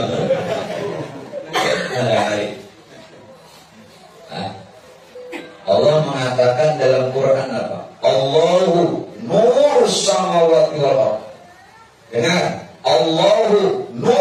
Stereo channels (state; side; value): identical; both; correlation 1.00